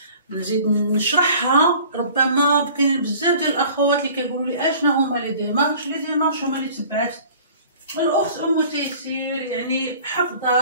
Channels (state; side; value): inverted; both; correlation -0.48